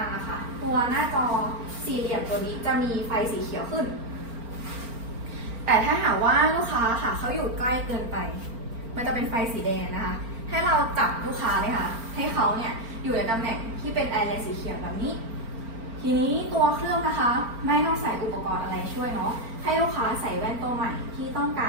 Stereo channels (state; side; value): late; left; 4.4 ms